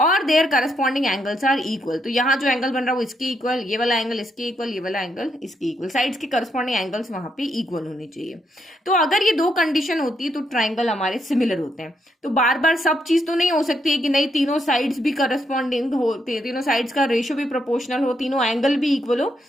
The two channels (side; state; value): both; normal; correlation 0.77